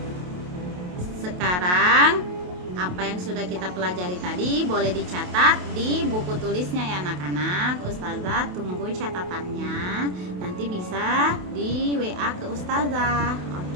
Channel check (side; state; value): left; late; 28 ms